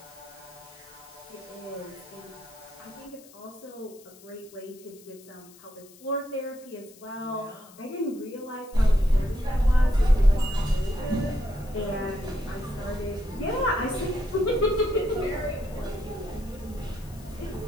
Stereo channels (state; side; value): noise; left; hiss, 23 dB below the sound